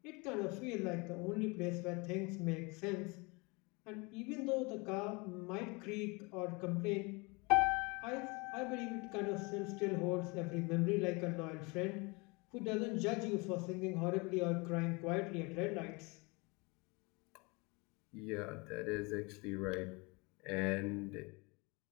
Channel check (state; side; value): quieter; right; 27.8 dB